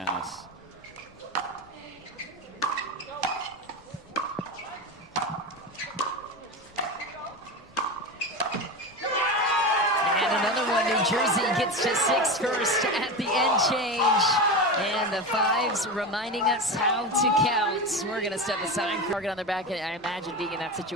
And another one, New Jersey gets to 6 first at the end change. And the fives reminding us how to count. We're going to step aside, target on their back. And I imagine being in that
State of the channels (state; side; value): noise; left; rumble, 30 dB below the sound